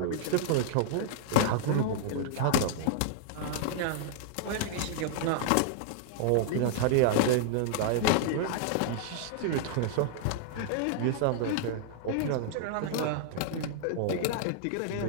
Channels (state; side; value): different; both; correlation -0.01